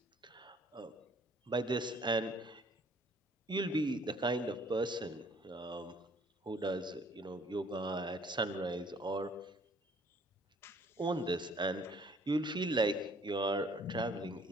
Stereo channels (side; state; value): both; normal; correlation 0.59